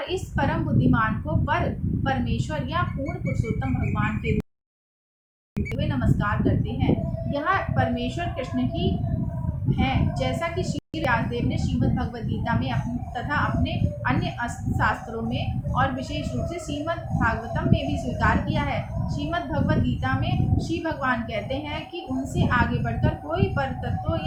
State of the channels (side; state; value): both; identical; correlation 1.00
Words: इस परम बुद्धिमान को परमेश्वर या पूर्ण पुरुषोत्तम भगवान के रूप में नमस्कार करते हैं। यह परमेश्वर कृष्ण ही हैं, जैसा कि श्री व्यासदेव ने श्रीमद् भगवद गीता में तथा अपने अन्य शास्त्रों में और विशेष रूप से श्रीमद् भागवतम में भी स्वीकार किया है। श्रीमद् भगवद गीता में श्री भगवान कहते हैं कि उनसे आगे बढ़कर कोई पर तत्व